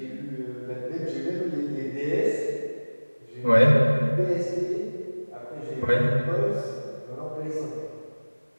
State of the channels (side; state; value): both; inverted; correlation -1.00